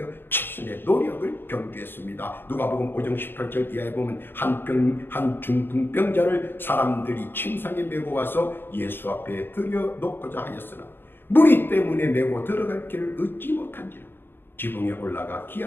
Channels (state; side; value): late; right; 0.10 ms